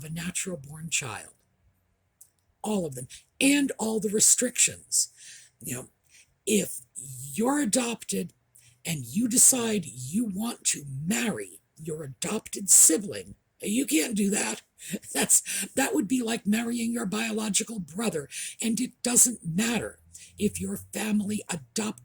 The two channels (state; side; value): identical; both; correlation 1.00